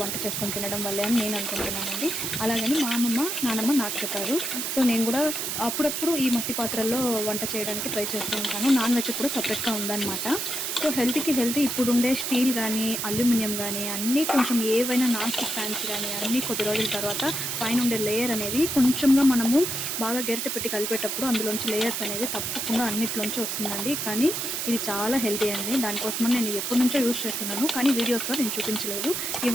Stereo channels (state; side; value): noise; right; hiss, 2 dB below the sound